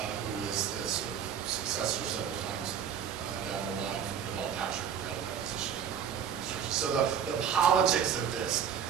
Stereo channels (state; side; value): quieter; left; 8.2 dB